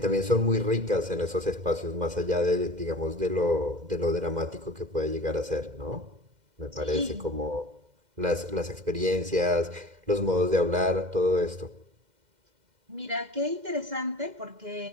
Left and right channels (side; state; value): left; late; 2.1 ms